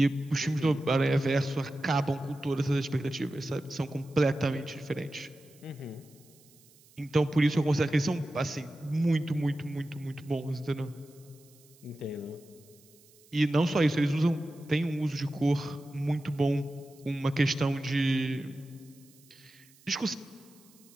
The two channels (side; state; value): right; noise; hiss, 27 dB below the sound